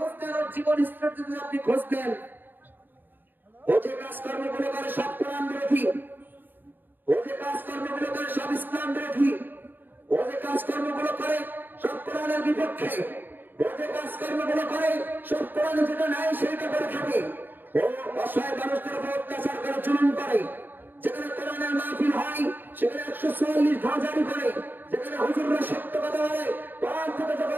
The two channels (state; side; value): late; left; 0.092 ms